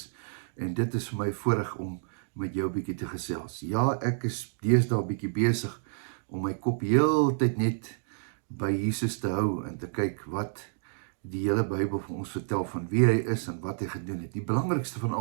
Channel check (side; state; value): left; silent; digital silence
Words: en dit is vir my voorreg om met jou 'n bietjie te gesels. Ja, ek is deesdae 'n bietjie besig om my kop heeltyd net by Jesus te hou en te kyk wat die hele Bybel vir ons vertel van wie hy is en wat hy gedoen het. Die belangrikste van